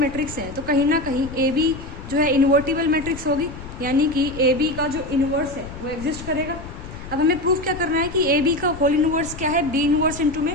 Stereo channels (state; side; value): noise; left; rumble, 13 dB below the sound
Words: है तो कहीं ना कहीं ए बी जो है इन्वर्टिबल मैट्रिक्स होगी, यानी कि ए बी का जो इनवर्स है वो एग्जिस्ट करेगा। अब हमें प्रूफ क्या करना है कि ए बी का होल इनवर्स क्या है, बी इनवर्स इंटू में